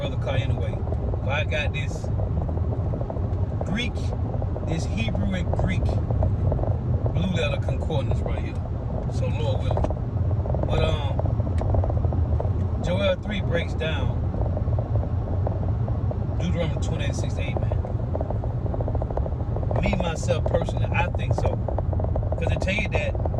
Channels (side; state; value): both; identical; correlation 1.00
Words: car anyway. But I got this Greek, this Hebrew and Greek blue letter concordance right here. So Lord willing. But Joel 3 breaks down Deuteronomy 28:6-8, man. Me, myself, personally, I think so. Because they tell you that